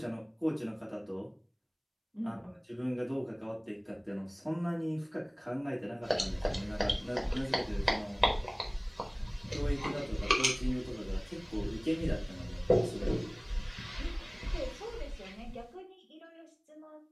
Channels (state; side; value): identical; both; correlation 1.00